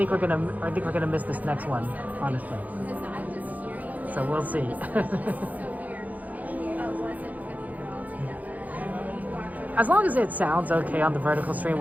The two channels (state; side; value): late; left; 0.078 ms